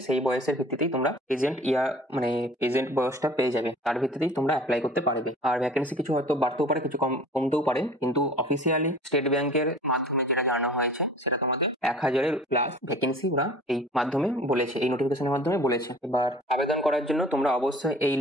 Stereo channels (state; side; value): normal; both; correlation 0.46